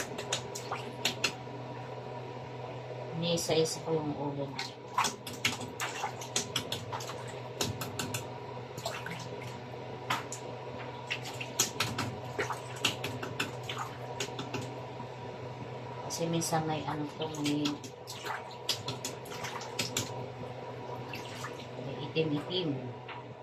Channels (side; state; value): both; identical; correlation 1.00